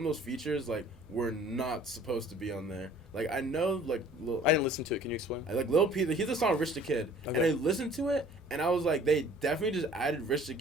of those features like were not supposed to be on there. Like I know like I didn't listen to it. Can you explain? Like Lil Peep, he's the song Rich the Kid, and I listened to it and I was like, they definitely just added Rich the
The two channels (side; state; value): both; normal; correlation 0.52